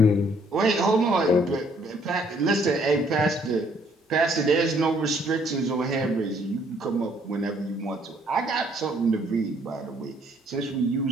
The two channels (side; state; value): both; normal; correlation 0.65